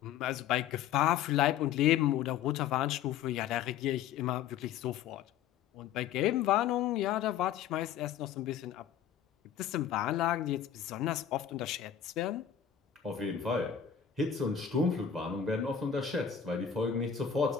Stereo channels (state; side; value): quieter; right; 8.8 dB